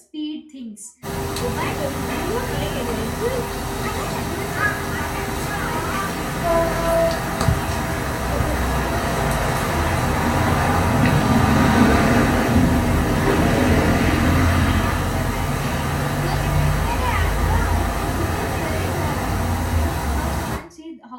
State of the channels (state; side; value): identical; both; correlation 1.00